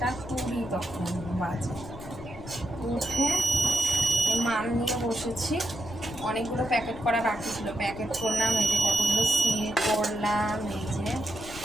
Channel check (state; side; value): noise; left; rumble, 15 dB below the sound